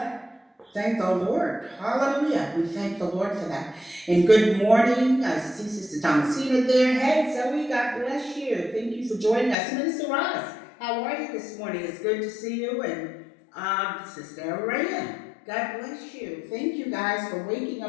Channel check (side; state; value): right; drops out; at 9.6 s